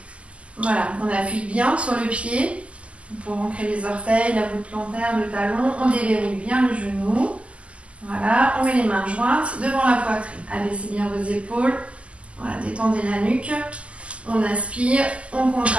Voilà, on appuie bien sur le pied pour ancrer les orteils, la voûte plantaire, le talon. On déverrouille bien le genou. Voilà, on met les mains jointes devant la poitrine. Abaissez bien vos épaules. Voilà, détendez la nuque. On inspire, on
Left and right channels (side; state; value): left; late; 0.059 ms